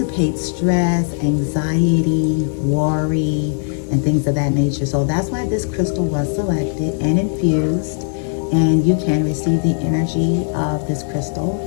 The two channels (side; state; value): right; silent; digital silence